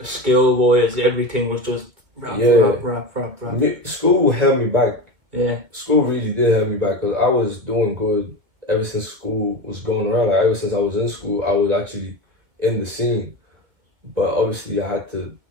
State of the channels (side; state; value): left; late; 2.3 ms